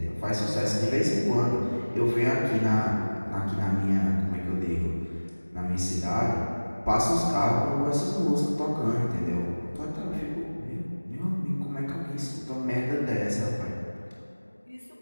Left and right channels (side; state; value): both; inverted; correlation -1.00